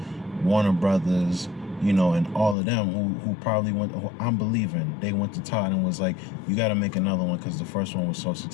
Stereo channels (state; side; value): drops out; right; at 2.6 s